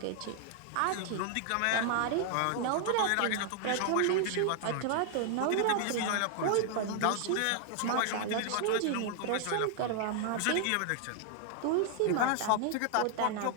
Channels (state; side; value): different; both; correlation 0.00